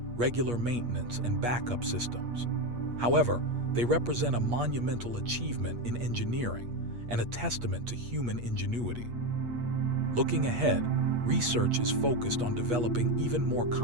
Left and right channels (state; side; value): late; left; 8.4 ms